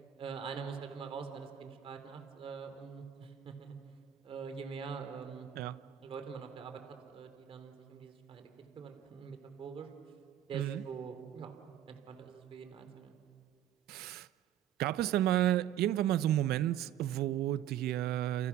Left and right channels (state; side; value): quieter; left; 11.2 dB